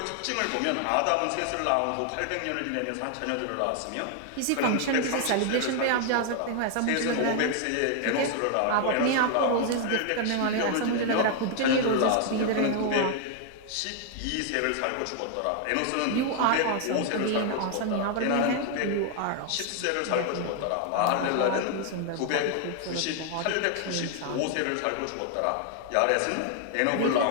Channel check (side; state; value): both; different; correlation 0.00